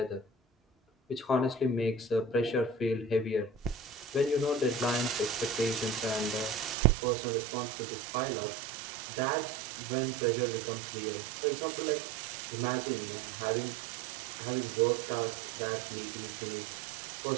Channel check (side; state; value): left; drops out; at 6.8 s